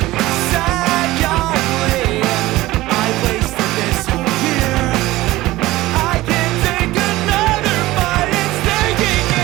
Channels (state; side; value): quieter; left; 17.8 dB